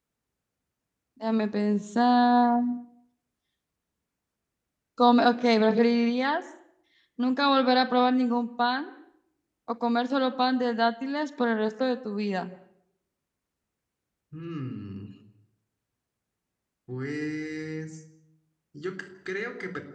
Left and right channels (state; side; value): identical; both; correlation 1.00